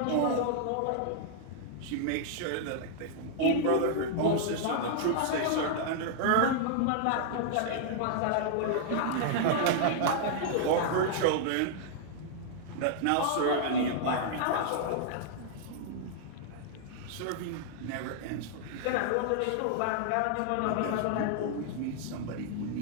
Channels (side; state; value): both; different; correlation -0.01